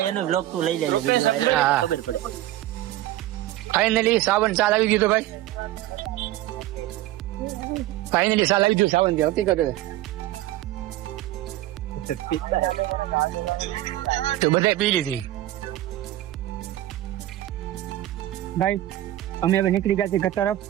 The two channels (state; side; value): quieter; left; 14.9 dB